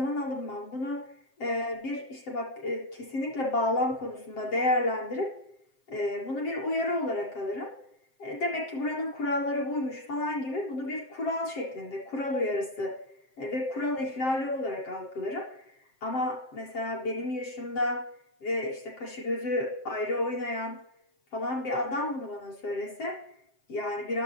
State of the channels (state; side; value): late; right; 7.6 ms